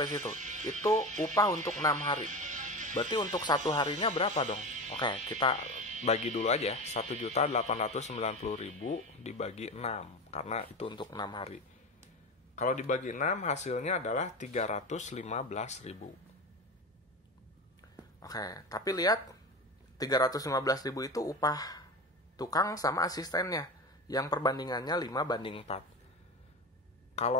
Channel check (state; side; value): normal; both; correlation 0.25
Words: situ. Itu upah untuk 6 hari. Berarti untuk 1 harinya berapa dong? Oke, kita bagi dulu aja. 1.890.000 dibagi 6. Karena itu untuk 6 hari. Kalau dibagi 6, hasilnya adalah 315.000. Oke, tapi lihat 315.000 itu upah tukang sama asistennya yang perbandingannya 5/4.